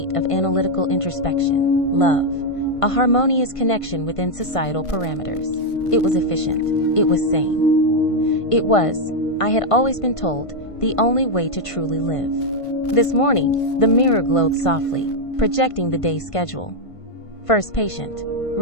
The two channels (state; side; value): late; right; 1.5 ms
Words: of analytical introspection. Love, a harmonious connection within societal parameters. It was efficient. It was sane. It was, I had always been told, the only way to truly live. This morning, the mirror glowed softly, projecting the day's schedule. First patient,